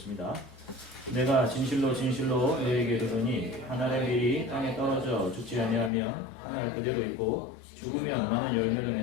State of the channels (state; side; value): drops out; right; at 5.9 s